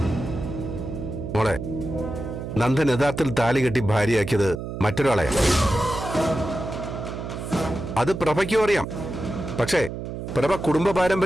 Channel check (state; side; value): noise; right; hum, 7 dB below the sound